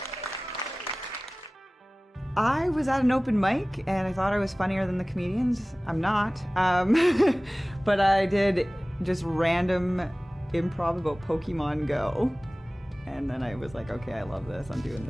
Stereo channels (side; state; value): both; normal; correlation 0.98